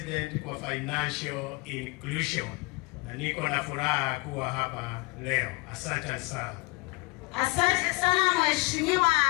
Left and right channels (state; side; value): quieter; right; 25.5 dB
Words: kwa Financial Inclusion. Na niko na furaha kuwa hapa leo. Asante sana. Asante sana Mheshimiwa